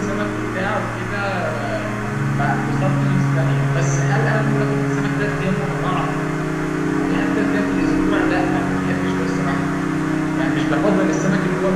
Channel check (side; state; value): both; identical; correlation 1.00